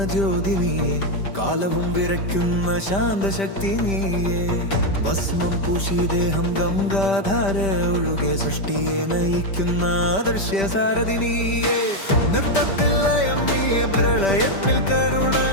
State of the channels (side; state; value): right; late; 5.1 ms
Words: ജ്യോതി നീയെ, കാലവും വിറയ്ക്കുന്ന ശാന്തശക്തി നീയെ. ഭസ്മം പൂശി ദേഹം ഗംഗാധാര ഒഴുകെ സൃഷ്ടിയെ നയിക്കുന്ന ആദർശ്യ സാരഥി നീയെ. നൃത്തത്തിൽ ലയം നീയെ, പ്രളയത്തിൽ കരുണ.